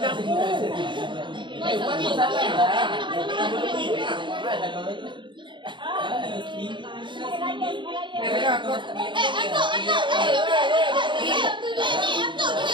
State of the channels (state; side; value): late; left; 0.23 ms